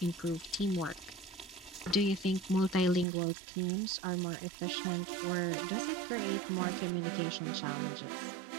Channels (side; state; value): left; drops out; at 3.1 s